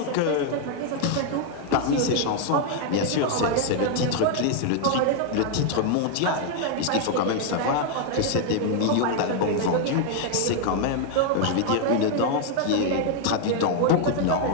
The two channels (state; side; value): different; both; correlation 0.00